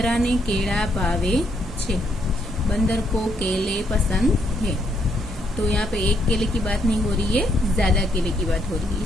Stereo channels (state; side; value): normal; both; correlation 0.74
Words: ने केला भावे छे। बंदर को केले पसंद है। तो यहाँ पे एक केले की बात नहीं हो रही है, ज्यादा केले की बात हो रही है,